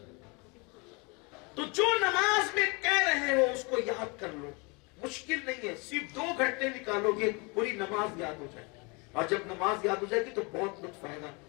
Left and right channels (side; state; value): right; quieter; 30.0 dB